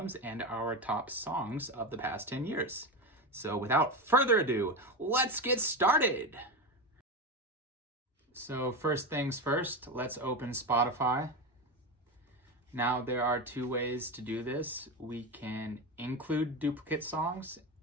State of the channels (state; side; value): normal; both; correlation 0.18